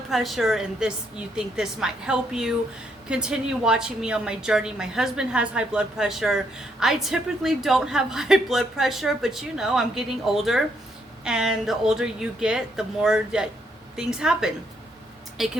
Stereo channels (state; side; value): normal; both; correlation 0.74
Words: pressure and this, you think this might help you, continue watching me on my journey. My husband has high blood pressure. I typically don't have high blood pressure, but you know, I'm getting older, and the older you get, the more that things happen. It